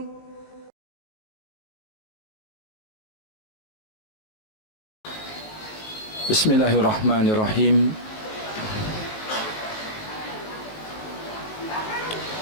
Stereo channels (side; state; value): right; late; 19 ms